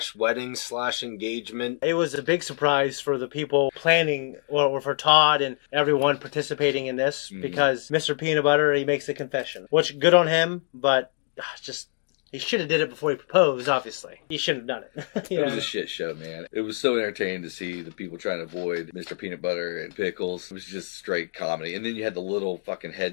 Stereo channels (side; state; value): right; quieter; 39.7 dB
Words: wedding / engagement. It was a big surprise for the people planning, well, for Todd and everyone participating in this, because Mr. Peanut Butter, he makes a confession. Which, good on him, but just... he should have did it before he proposed, obviously. He shouldn't have done it. It was a shit show, man. It was so entertaining to see the people trying to avoid Mr. Peanut Butter and Pickles. It was just straight comedy. And then you had the little fucking